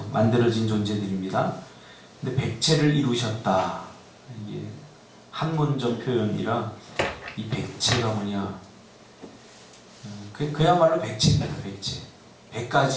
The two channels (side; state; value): both; identical; correlation 1.00